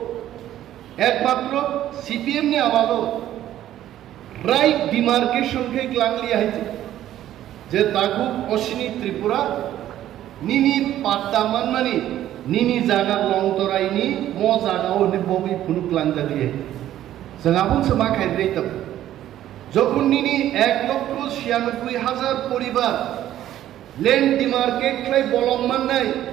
एकमात्र सीपीएम ने आमालो राइट डिमार्केशन के ग्लांगली आइছে जे ताकु पश्चिमी त्रिपुरा निनी पाट्टा मानमानि निनी जागा लंतरायनि म जागाव नि बबि फुनुक लांजालिए जोंहाबो समा खायद्रायतब যখন নিনি 1,96,000 পরিবার ল্যান্ড ডিমার্কেট খাই বলংমান নাই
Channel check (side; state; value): left; quieter; 12.5 dB